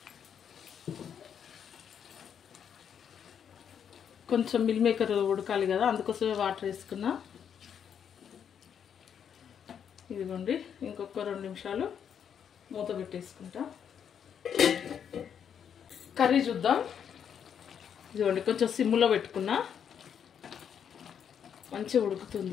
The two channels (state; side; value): quieter; right; 8.1 dB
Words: కొంచెం మిల్ మేకర్ ఉడకాలి కదా, అందుకోసమే వాటర్ వేసుకున్నా. ఇదిగోండి, ఇంకొక 2 నిమిషాలు మూత పెట్టేసుకుంటా. కర్రీ చూద్దాం. ఇదిగోండి, కొంచెం సిమ్లో పెట్టుకున్నా, మంచిగా